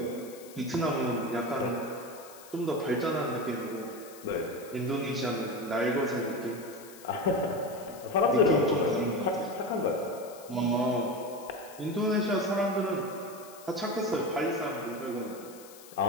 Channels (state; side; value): noise; left; hiss, 19 dB below the sound